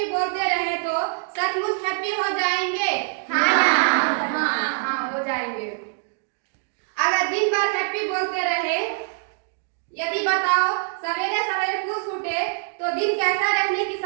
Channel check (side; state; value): left; silent; digital silence